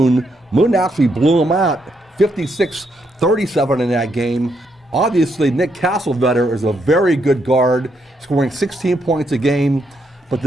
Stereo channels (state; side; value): normal; both; correlation 0.77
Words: Moon actually blew them out 56-37 in that game. Obviously, Nick Castlevetter is a very good guard, scoring 16 points a game. But